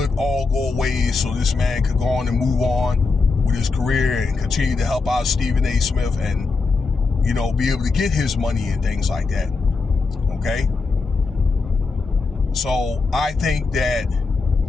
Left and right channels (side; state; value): right; quieter; 4.1 dB